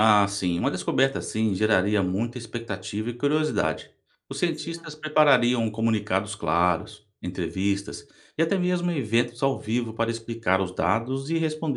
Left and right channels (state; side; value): identical; both; correlation 1.00